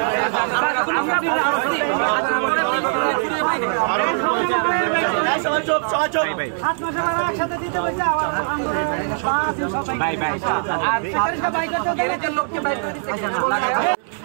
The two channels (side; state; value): left; silent; 65 dB below the other